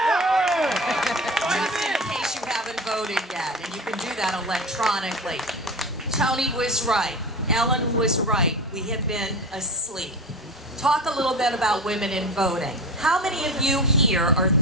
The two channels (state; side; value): normal; both; correlation 0.29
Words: Just in case you haven't voted yet, and you can do that electronically. Tony was right. Ellen was right. We have been asleep. Talk a little bit about women in voting. How many of you here are